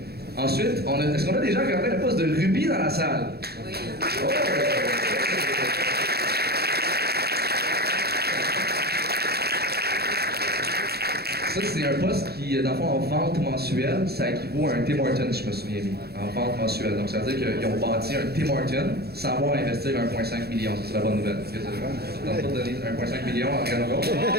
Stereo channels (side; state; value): left; late; 0.46 ms